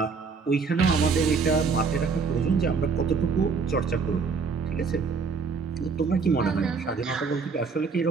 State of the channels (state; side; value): quieter; left; 5.0 dB